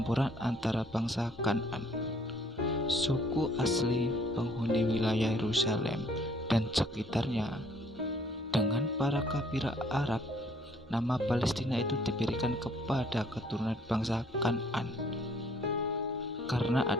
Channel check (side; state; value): both; normal; correlation 0.61